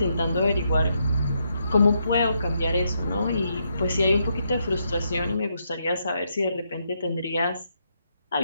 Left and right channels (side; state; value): both; inverted; correlation -0.78